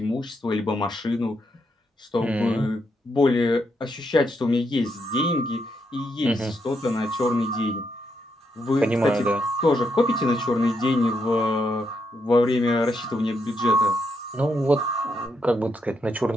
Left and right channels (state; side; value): normal; both; correlation 0.79